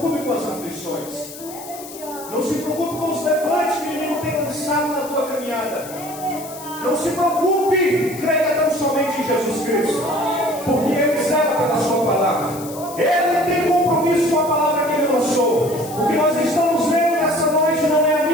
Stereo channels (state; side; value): noise; left; hiss, 15 dB below the sound